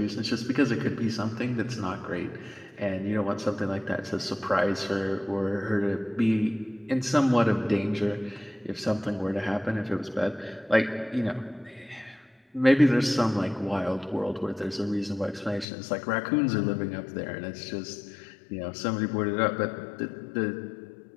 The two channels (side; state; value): right; drops out; at 15.7 s